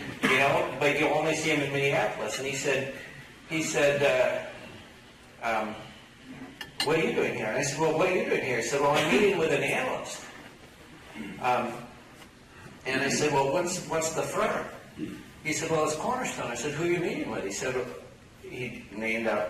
but you only see him in Minneapolis. And he said, what are you doing here? And I said, well, what are you doing here? He said, well, I'm meeting with an analyst. And I said, well, what's the firm? He said, well, it's Cornerstone. I said, who are you meeting with? He said, he named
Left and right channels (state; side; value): identical; both; correlation 1.00